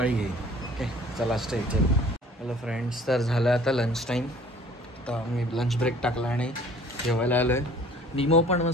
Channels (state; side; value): normal; both; correlation 0.52